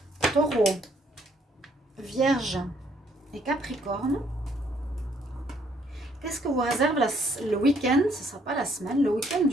Taureau, Vierge et Capricorne. Qu'est-ce que vous réserve le week-end? Ce ne sera pas la semaine, le week-end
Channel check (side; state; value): both; normal; correlation 0.67